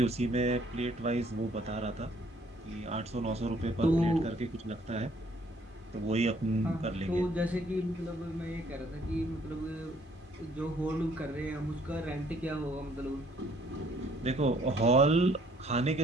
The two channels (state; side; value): normal; both; correlation 0.63